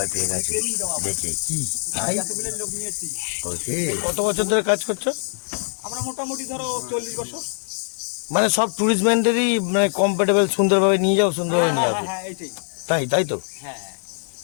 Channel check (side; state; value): right; silent; 64 dB below the other